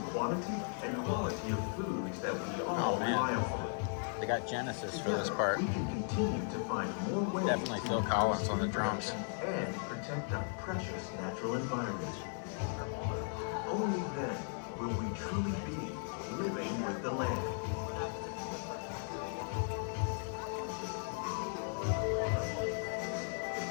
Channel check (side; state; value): right; silent; 53 dB below the other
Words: quantity and quality of foods that we all rely on. They got Genesis for this part. We can continue to find more ways Definitely Phil Collins on the drums. and protect our precious natural environment. Only then will we truly be living with the land.